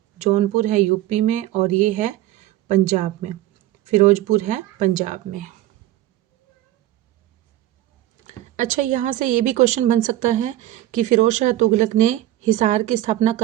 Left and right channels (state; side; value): quieter; left; 14.3 dB